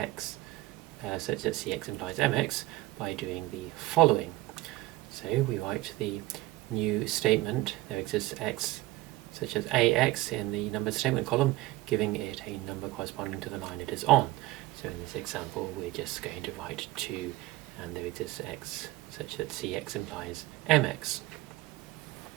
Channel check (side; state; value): left; quieter; 18.1 dB